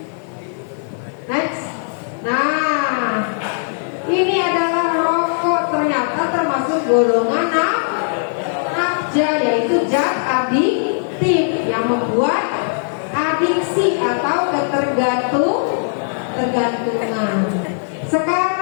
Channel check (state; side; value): silent; right; digital silence